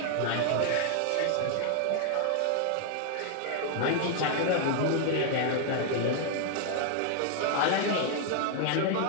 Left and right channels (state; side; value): different; both; correlation 0.00